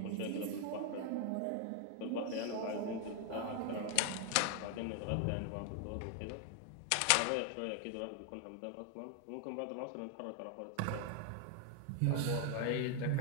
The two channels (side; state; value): both; different; correlation 0.00